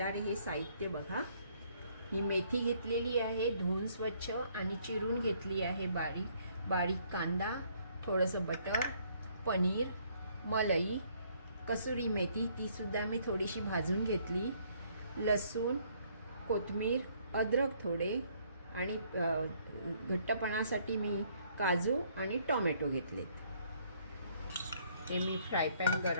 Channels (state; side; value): inverted; both; correlation -0.65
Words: हे साहित्य बघा। ही मेथी घेतलेली आहे, धुवून स्वच्छ आणि चिरून घेतली आहे। बारीक कांदा, थोडंसं बटर, पनीर, मलई, कसुरी मेथी ती सुद्धा मी थोडीशी भाजून घेतली, लसूण, कोथिंबीर, अद्रक थोडे आणि घट्टपणासाठी मी काजू आणि टोमॅटो घेतलेत। हे मी फ्राय पॅन